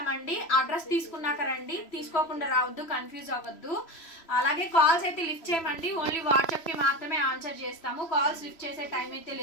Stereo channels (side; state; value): right; late; 3.0 ms